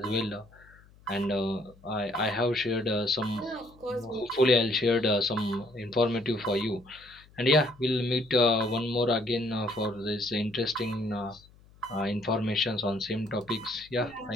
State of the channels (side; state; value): left; noise; hum, 26 dB below the sound